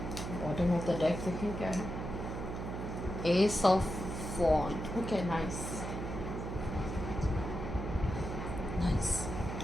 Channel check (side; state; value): right; noise; hum, 5 dB below the sound